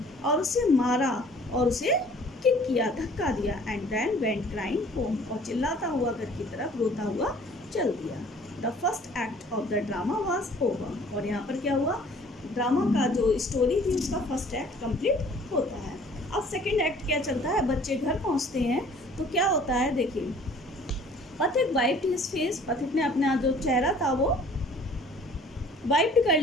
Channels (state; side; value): normal; both; correlation 0.52